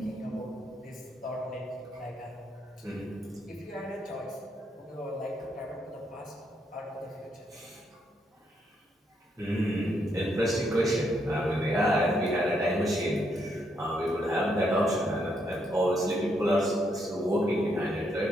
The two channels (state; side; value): normal; both; correlation 0.76